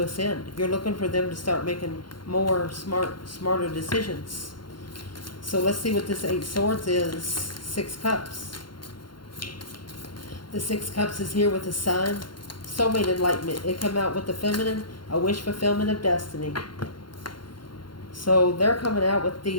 ascend. You're looking for them to start making more smarter decisions. So let's see what this 8 Swords is. 6 Cups. The 6 Cups is here with the Sun. Soulmate enlightenment. It come out with the feminine, a wish fulfillment of destiny. So they're coming out with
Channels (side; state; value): right; late; 0.72 ms